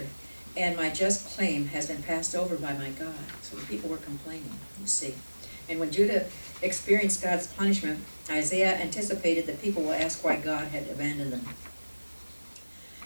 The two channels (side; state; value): both; inverted; correlation -1.00